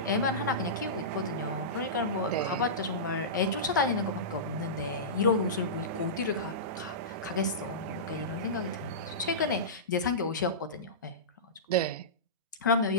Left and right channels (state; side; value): normal; both; correlation -0.19